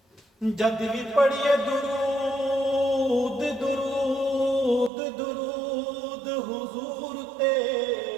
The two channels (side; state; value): left; drops out; at 4.9 s